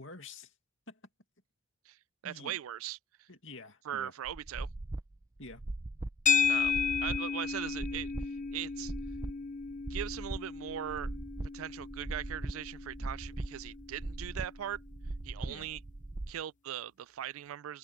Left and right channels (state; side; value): normal; both; correlation 0.53